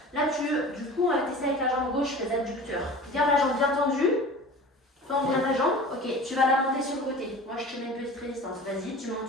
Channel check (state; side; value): normal; both; correlation 0.38